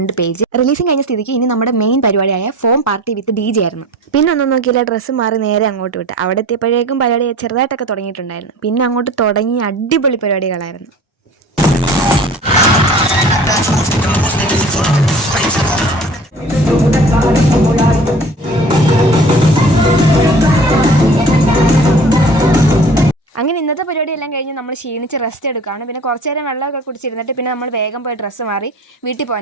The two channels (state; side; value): normal; both; correlation 0.43